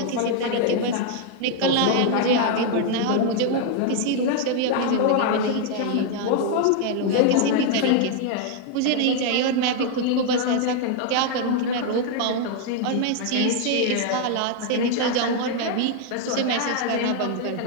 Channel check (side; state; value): both; different; correlation 0.00